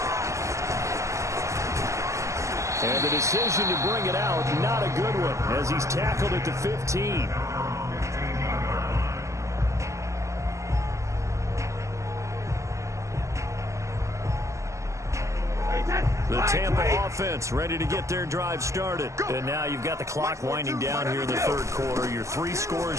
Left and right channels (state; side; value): late; left; 0.15 ms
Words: And the decision to bring it out, not a good one, as he's tackled at the 15. The Tampa offense ready to get their drive started. And now you've got the clock winding down here in the 3rd quarter. Your 3